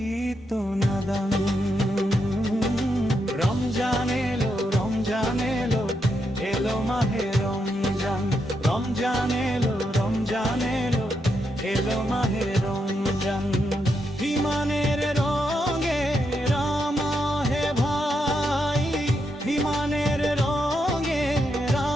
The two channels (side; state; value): both; normal; correlation 0.82